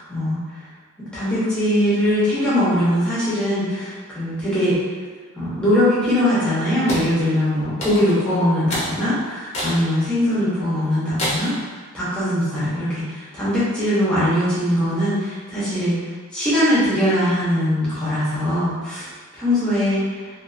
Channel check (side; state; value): both; normal; correlation 0.59